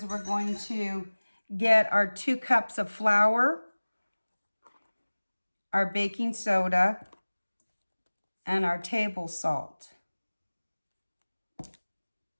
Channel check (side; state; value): both; inverted; correlation -1.00